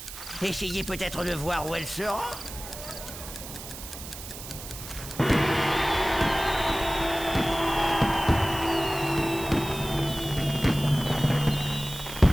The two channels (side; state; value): right; noise; hiss, 12 dB below the sound